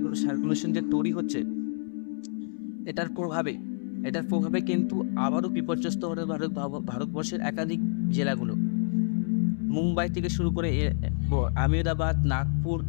সার্কুলেশন যে তৈরি হচ্ছে, এটার প্রভাবে কিন্তু আবারও বিপর্যস্ত হবে ভারতবর্ষের একাধিক জেলাগুলো। মুম্বাই থেকে শুরু করে আহমেদাবাদ, নাগপুর,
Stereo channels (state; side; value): silent; right; 59 dB below the other